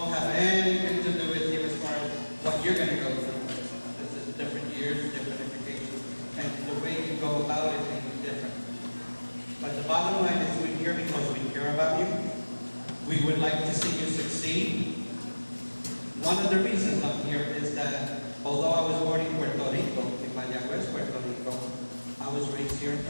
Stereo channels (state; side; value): inverted; both; correlation -1.00